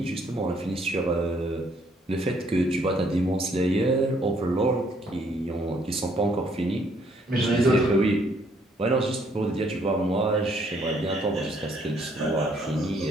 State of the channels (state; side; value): normal; both; correlation 0.67